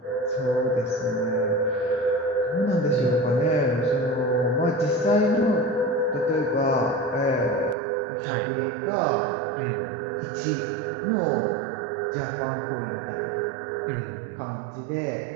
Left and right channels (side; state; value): left; drops out; at 7.8 s